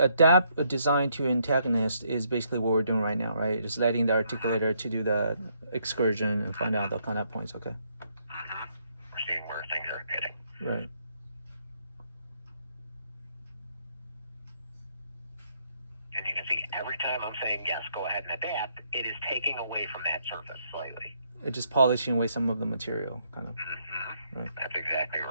a design to antagonist is basically what we're doing right now, right? Just letting the articulator to do the excursion and find out the contact points. Okay. We're seeing where things are hitting. Right. And you can see every time I'm saying yes, go ahead and adapt, it is taking away from that surface slightly. It's just polishing away some of the material, kind of. Right. That's exactly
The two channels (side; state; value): both; inverted; correlation -0.73